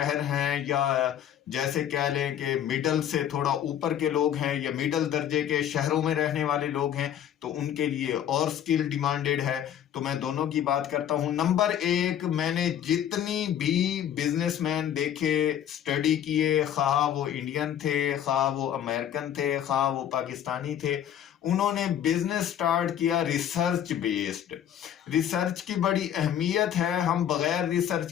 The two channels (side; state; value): right; quieter; 10.1 dB